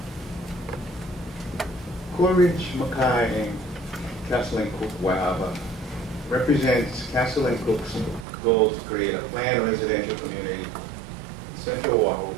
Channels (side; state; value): left; drops out; at 8.2 s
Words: Coa Ridge, Makai, and Castle and Cook, Waiawa represents Castle and Cook's goal to create a planned residential community in Central Oahu